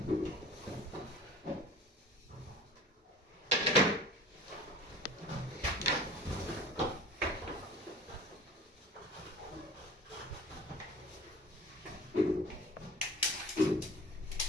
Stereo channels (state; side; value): normal; both; correlation 0.41